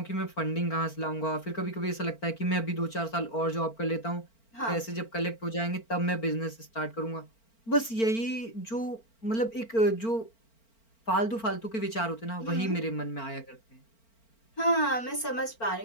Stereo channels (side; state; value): right; late; 4.4 ms